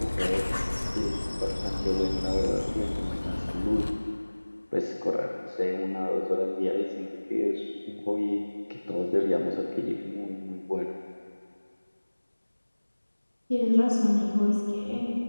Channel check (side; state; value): both; inverted; correlation -1.00